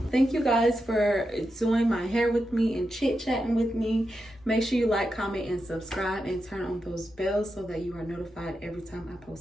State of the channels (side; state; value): both; normal; correlation 0.88